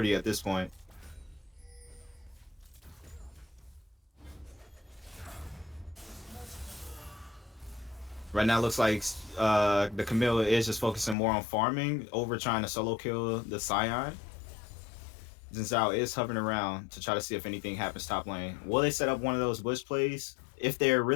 at this point. Right now it looks like the Camille is just focusing more on farming over trying to solo kill the Scion. Xin Zhao is hovering around to try to see if anything happens top lane. Will they set up one of those bush plays? If they're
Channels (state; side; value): drops out; right; at 11.2 s